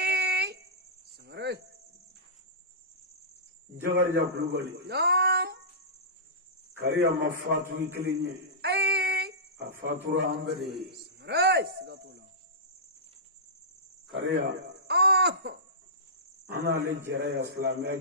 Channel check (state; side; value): normal; both; correlation -0.19